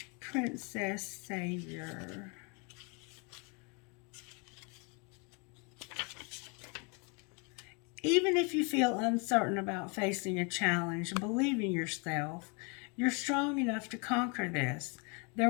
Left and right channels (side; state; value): right; quieter; 33.2 dB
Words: Princess Savior. Even if you feel uncertain about facing a challenge, believe in yourself. You're strong enough to conquer this. There